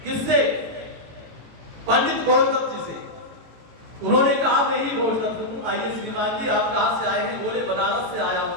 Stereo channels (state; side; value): late; left; 18 ms